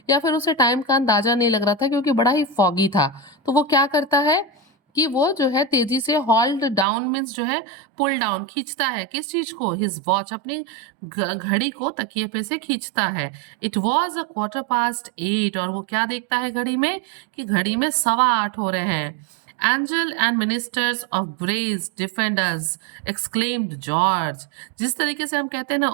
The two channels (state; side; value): drops out; left; at 6.9 s